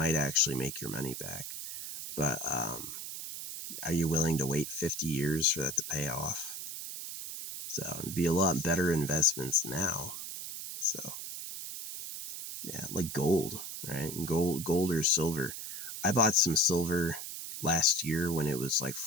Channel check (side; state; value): right; noise; hiss, 7 dB below the sound